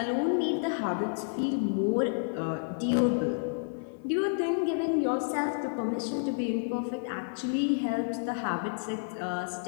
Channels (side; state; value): right; silent; digital silence